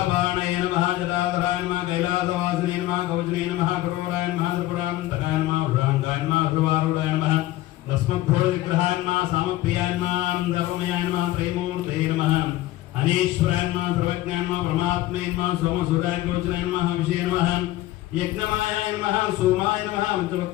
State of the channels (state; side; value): quieter; right; 15.9 dB